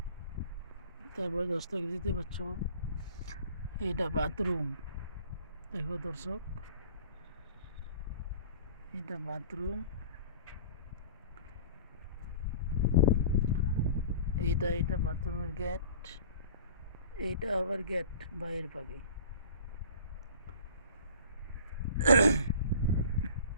তারপরে দর্শক দিতে পারছ, এটা বাথরুম। দেখো দর্শক, এটা বাথরুম, এটা বাথরুমের গেট, এইটা আবার গেট বাইরের পাখি।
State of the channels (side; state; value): both; inverted; correlation -0.44